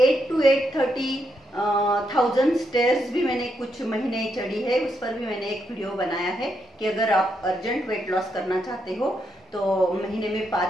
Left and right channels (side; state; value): both; normal; correlation 0.80